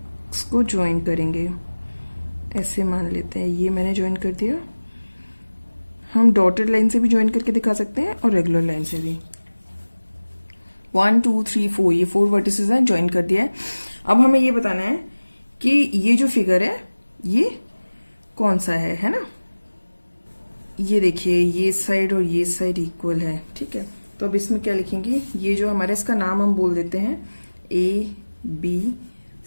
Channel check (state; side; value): inverted; both; correlation -1.00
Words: को ज्वाइन करेंगे। ऐसे मान लेते हैं, ये मैंने ज्वाइन कर दिया। हम डॉटेड लाइन से भी ज्वाइन करके दिखा सकते हैं और रेगुलर लाइन से भी। 1 2 3 4, ये 4 वर्टिसेस हैं, ज्वाइन कर दिया है। अब हमें ये बताना है कि ये जो फिगर है ये कौन सा है ना। ये देखिए, ये साइड और ये साइड इक्वल है, ठीक है। तो अब इसमें क्या लिखेंगे, ये जो हमारा, इसका नाम हम बोल देते हैं A B